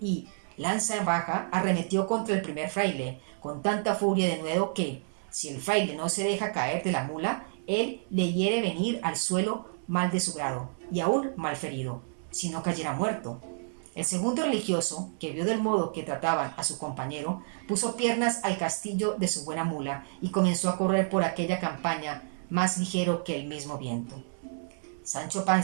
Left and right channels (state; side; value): silent; left; 58 dB below the other